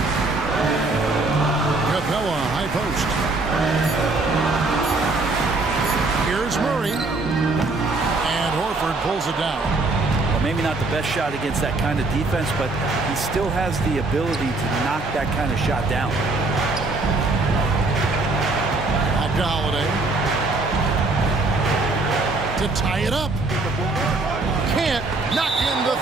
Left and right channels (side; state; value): left; quieter; 3.3 dB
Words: Capella, high post. Here's Murray. And Horford pulls it down. Well, maybe not the best shot against that kind of defense, but he still has the ability to knock that kind of shot down. Back to Holiday. To tie it up. Can't knock in the